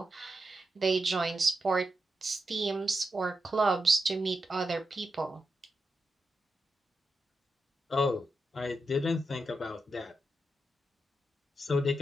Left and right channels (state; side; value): normal; both; correlation 0.86